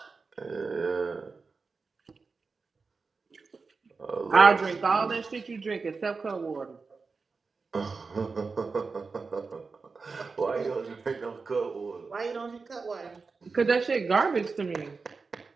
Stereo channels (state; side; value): quieter; left; 4.5 dB